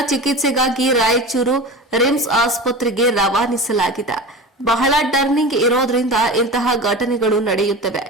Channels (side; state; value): both; normal; correlation 0.31